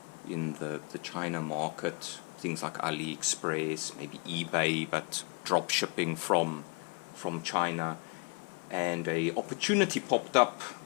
in the China market, things like AliExpress, maybe eBay, but drop shipping from China. And a opportunity popped up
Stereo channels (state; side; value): quieter; right; 34.4 dB